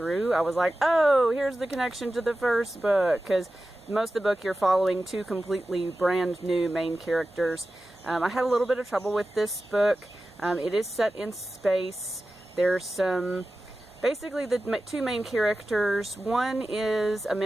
I was like, oh, here's the connection to the first book, because most of the book you're following 2 completely brand new main characters. I had a little bit of trouble with this book. It is set in space. There's some... Basically, the 2 main characters, one is a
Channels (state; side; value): normal; both; correlation 0.94